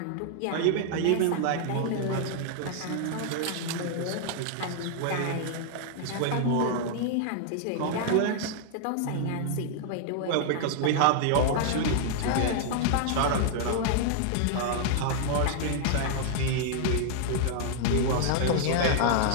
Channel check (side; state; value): both; different; correlation -0.01